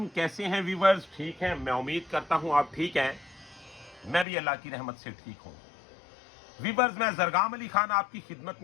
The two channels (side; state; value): right; drops out; at 4.2 s